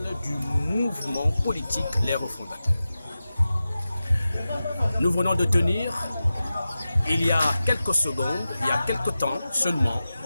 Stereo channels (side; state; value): both; inverted; correlation -0.93